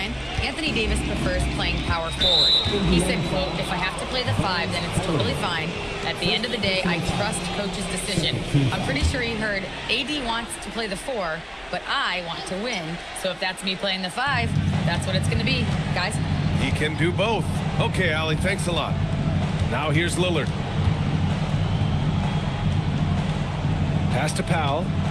Anthony Davis prefers playing power forward. He said, quote, "If I have to play the 5, then it's totally fine. At the end of the day, I trust coach's decision." I'm pretty sure he heard AD wants to play the 4, but I want to win. So if that's me playing the 5, that's what it's going to be, guys. He can do both. Okay, Allie, thanks a lot. Now here's Lillard. Pass to Powell.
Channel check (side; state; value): both; identical; correlation 1.00